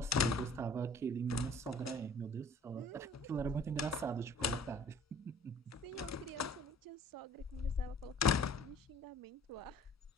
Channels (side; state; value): both; normal; correlation 0.51